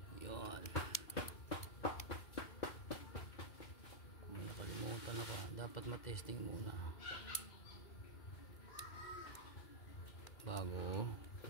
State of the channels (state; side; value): late; right; 2.4 ms